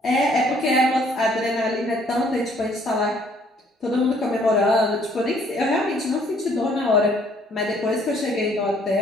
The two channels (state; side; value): normal; both; correlation 0.62